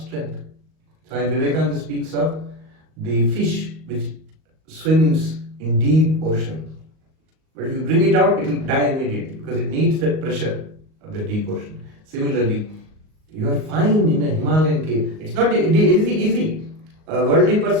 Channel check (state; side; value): late; left; 38 ms